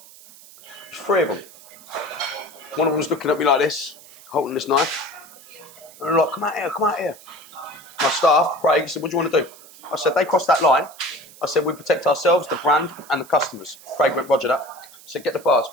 There's three of them. One of them was looking at me like this, holding this knife. And they're like, come out here. My staff, Craig, said, what do you want to do? I said, they crossed that line. I said, we protect ourselves, the brand, and the customers. Craig went, roger that. I said, get the bars,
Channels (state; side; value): noise; right; hiss, 21 dB below the sound